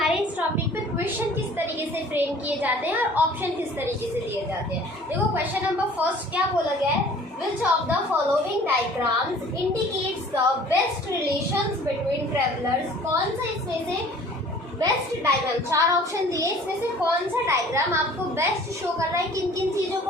इस टॉपिक पे क्वेश्चन किस तरीके से फ्रेम किए जाते हैं और ऑप्शन किस तरीके से दिए जाते हैं। देखो क्वेश्चन नंबर फर्स्ट क्या बोला गया है, Which of the following diagrams indicates the best relations between travelers? कौन सा इसमें से बेस्ट डायग्राम, 4 ऑप्शन दिए, इसमें से कौन सा डायग्राम आपको बेस्ट शो कर रहा है किन किन चीज़ों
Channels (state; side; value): normal; both; correlation 0.50